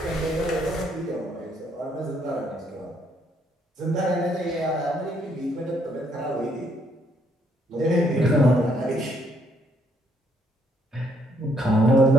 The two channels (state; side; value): normal; both; correlation 0.70